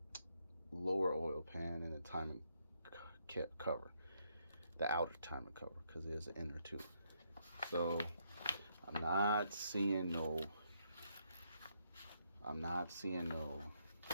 Lower oil pan and the timing cover. The outer timing cover, because there's an inner too. So I'm not seeing no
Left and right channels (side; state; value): both; inverted; correlation -0.76